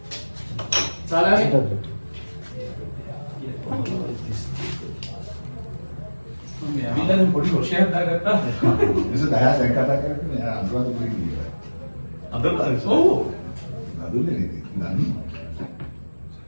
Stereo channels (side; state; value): both; inverted; correlation -1.00